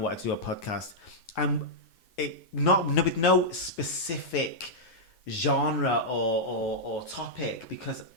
to do a podcast. And with no specific genre or topic, because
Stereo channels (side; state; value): right; late; 9.5 ms